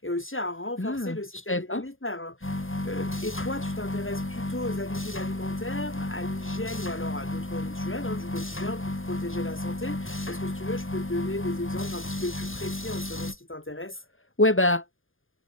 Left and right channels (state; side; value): late; right; 0.59 ms